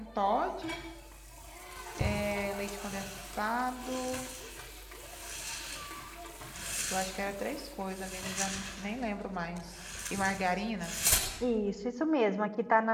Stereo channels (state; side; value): identical; both; correlation 1.00